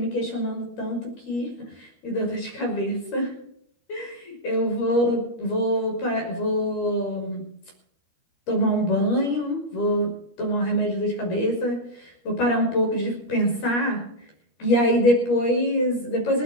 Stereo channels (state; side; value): late; right; 13 ms